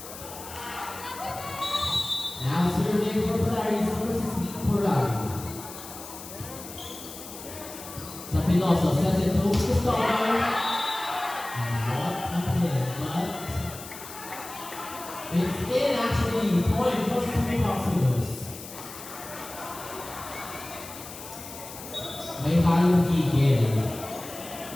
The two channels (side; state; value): left; noise; hiss, 13 dB below the sound